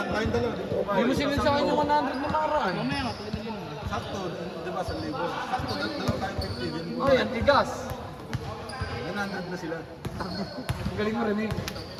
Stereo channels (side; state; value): both; identical; correlation 1.00